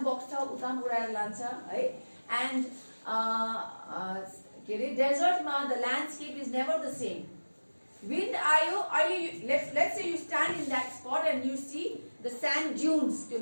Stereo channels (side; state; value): both; inverted; correlation -1.00